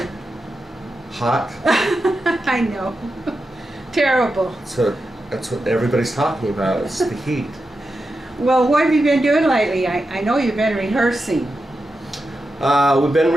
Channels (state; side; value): normal; both; correlation 0.89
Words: Hot. I know. Terrible. So that's what everybody's talking about. It's the heat. Well, what have you been doing lately? I know you've been rehearsing. We've been